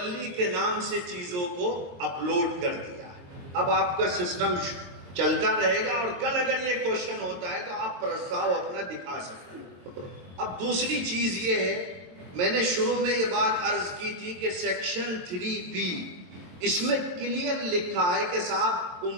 کے نام سے چیزوں کو اپلوڈ کر دیا، اب آپ کا سسٹم چلتا رہے گا، اور کل اگر یہ کوشچن ہوتا ہے تو آپ پرستاؤ اپنا دکھا سکتے ہیں۔ اب دوسری چیز یہ ہے، میں نے شروع میں یہ بات عرض کی تھی کہ سیکشن 3B اس میں کلیئر لکھا ہے کہ صاحب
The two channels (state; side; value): late; left; 22 ms